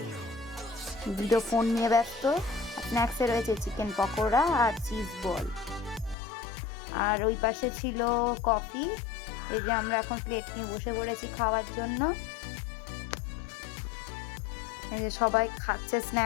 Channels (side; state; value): right; drops out; at 6.2 s